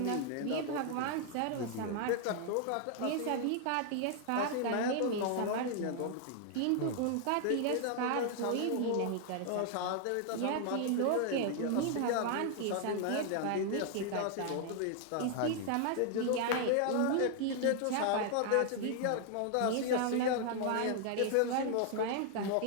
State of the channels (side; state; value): both; different; correlation 0.00